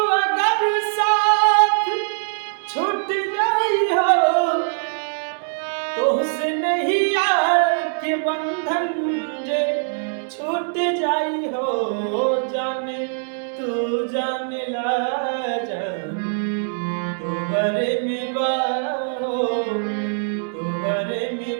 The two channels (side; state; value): left; silent; 64 dB below the other